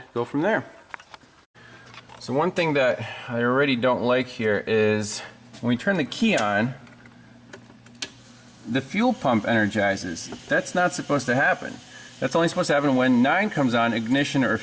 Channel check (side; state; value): both; identical; correlation 1.00